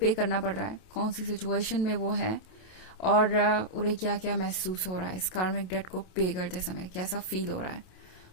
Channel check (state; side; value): late; right; 27 ms